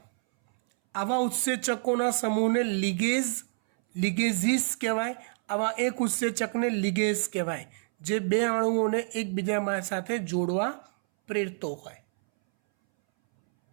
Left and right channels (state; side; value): silent; left; 59 dB below the other